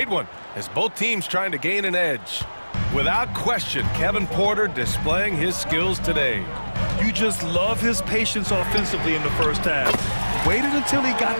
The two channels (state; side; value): inverted; both; correlation -1.00